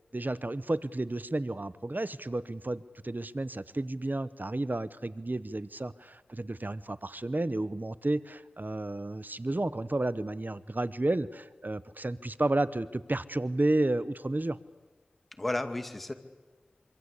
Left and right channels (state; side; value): normal; both; correlation 0.96